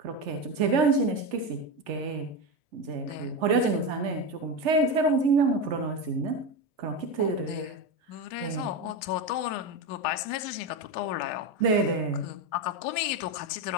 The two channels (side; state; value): left; late; 3.4 ms